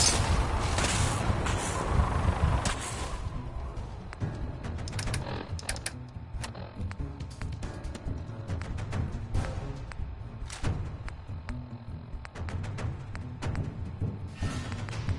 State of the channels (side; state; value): both; identical; correlation 1.00